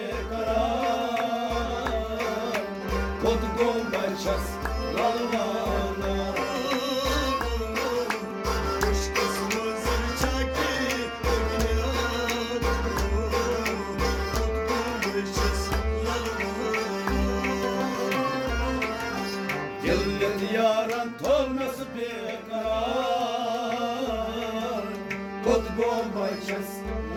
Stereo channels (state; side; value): identical; both; correlation 1.00